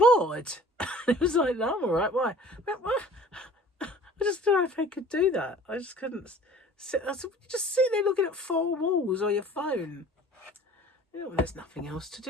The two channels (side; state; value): both; normal; correlation 0.47